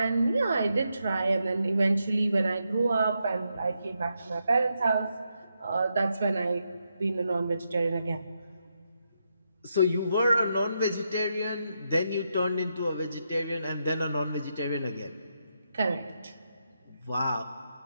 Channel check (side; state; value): both; inverted; correlation -0.82